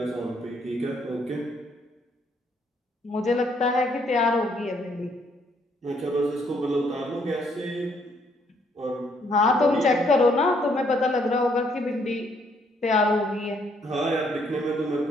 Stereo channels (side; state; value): both; normal; correlation 0.69